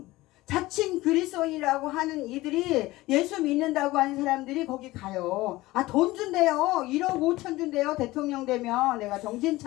자칭 그리스도인이라고 하는 이들이 예수 믿는다고 하는 사람들이 거기 가요. 아, 돈 준대요. 1억 5천 준대요. 대통령 되면 내가 정신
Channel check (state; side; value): quieter; right; 18.7 dB